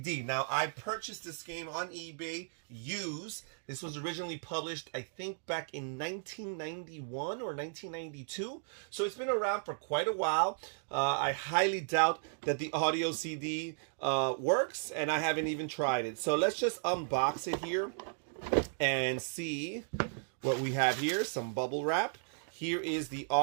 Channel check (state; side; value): silent; left; digital silence